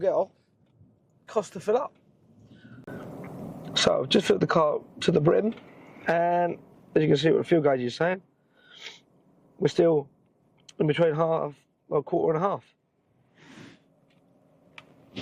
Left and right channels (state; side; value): identical; both; correlation 1.00